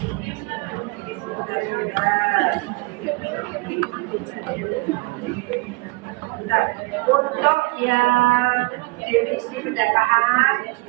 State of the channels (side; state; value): left; quieter; 26.6 dB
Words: untuk yang definisi pendataan,